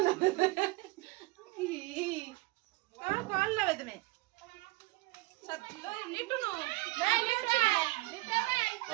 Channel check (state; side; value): quieter; left; 22.7 dB